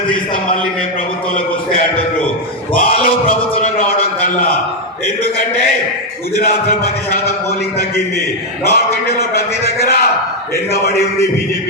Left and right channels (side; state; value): both; normal; correlation 0.02